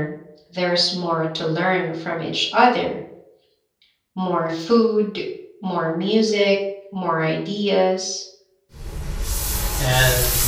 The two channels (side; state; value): both; identical; correlation 1.00